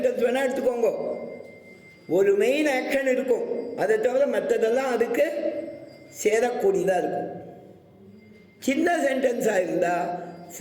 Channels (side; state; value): both; identical; correlation 1.00